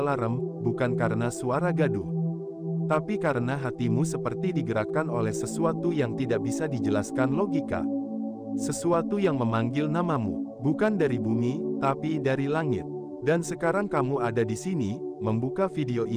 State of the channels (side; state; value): both; identical; correlation 1.00